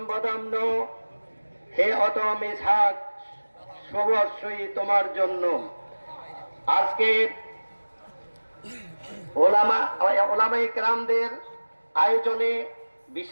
বদাম্ন, হে অধম ইসহাক সবস্বই তোমার জন্য। আজকে ওলামায়ে কেরামদের আয়োজনে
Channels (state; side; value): inverted; both; correlation -1.00